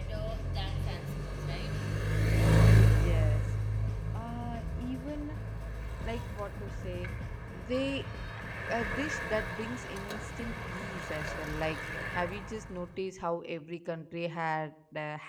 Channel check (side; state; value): both; identical; correlation 1.00